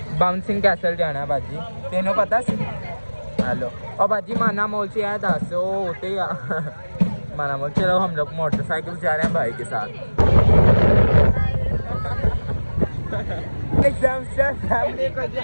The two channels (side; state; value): both; inverted; correlation -1.00